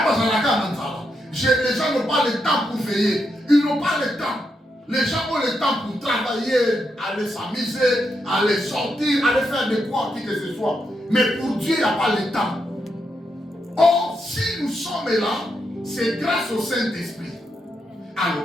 gens n'ont pas le temps pour veiller. Ils n'ont pas le temps. Les gens ont le temps pour travailler, aller s'amuser, aller sortir, aller faire de quoi, qui que ce soit. Mais pour Dieu, il n'y a pas le temps. Or, si nous sommes là, c'est grâce au Saint-Esprit.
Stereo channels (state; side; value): normal; both; correlation 0.82